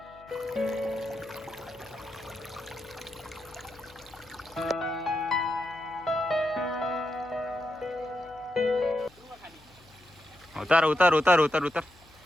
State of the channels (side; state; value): left; noise; hum, 26 dB below the sound